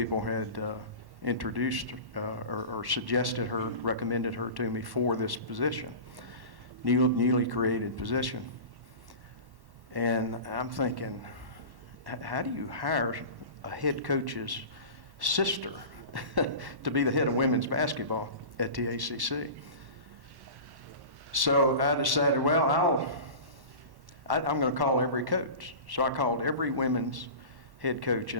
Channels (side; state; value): left; late; 1.1 ms